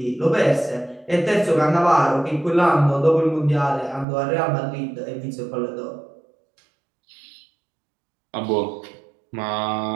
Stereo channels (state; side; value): drops out; left; at 4.0 s